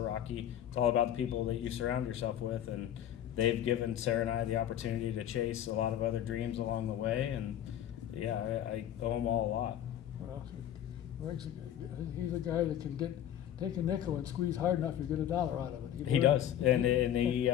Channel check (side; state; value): right; quieter; 10.9 dB